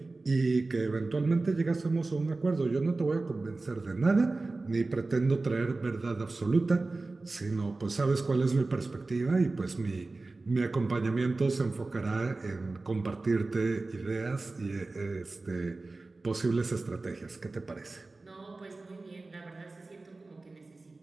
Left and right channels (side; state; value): left; quieter; 3.4 dB